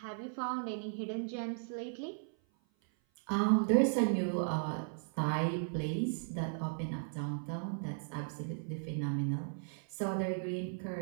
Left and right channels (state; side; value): silent; left; 54 dB below the other